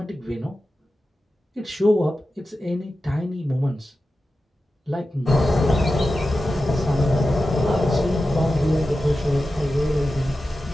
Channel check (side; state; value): both; normal; correlation 0.93